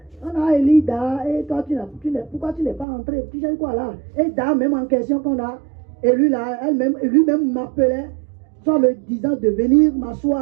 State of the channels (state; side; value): drops out; left; at 2.9 s